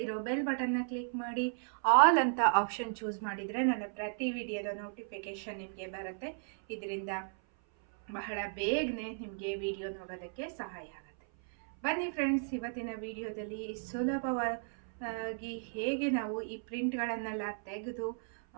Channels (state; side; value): silent; left; 55 dB below the other